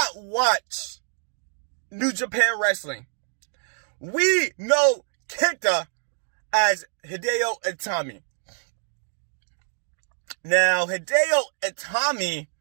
watch New Japan Wrestling, we know KENTA as Hideo Itami. Now, Hideo Itami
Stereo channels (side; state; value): left; silent; digital silence